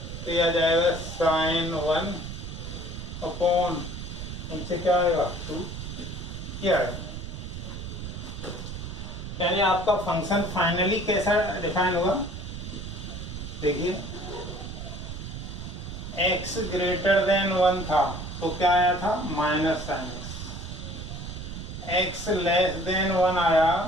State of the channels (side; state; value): right; noise; rumble, 8 dB below the sound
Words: तो ये आ जाएगा sin 1 अपॉन इनसे क्या आएगा 2, क्या आएगा। यानी आपका फंक्शन फाइनली कैसा डिफाइन हुआ, देखिए x ग्रेटर देन 1 था तो क्या आया था minus sine x less than 1 आया